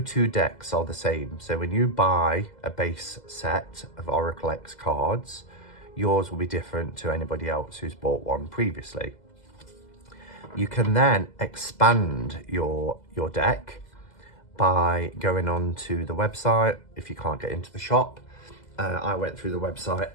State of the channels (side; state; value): right; late; 2.0 ms